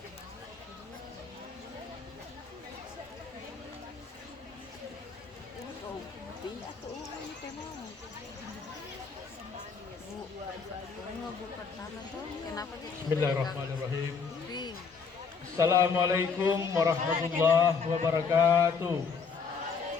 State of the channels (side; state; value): right; quieter; 5.5 dB